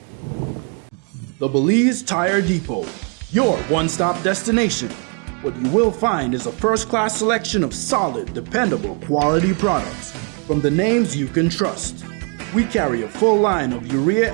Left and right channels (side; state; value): left; quieter; 38.1 dB